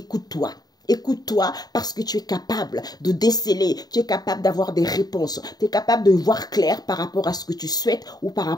Écoute-toi parce que tu es capable de déceler, tu es capable d'avoir des réponses, tu es capable de voir clair par rapport à ce que tu souhaites ou par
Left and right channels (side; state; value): right; late; 0.19 ms